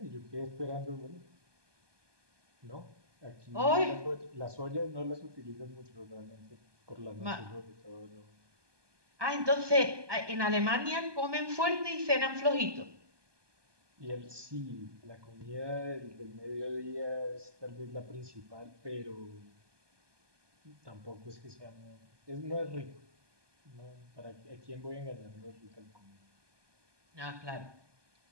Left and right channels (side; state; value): left; late; 1.2 ms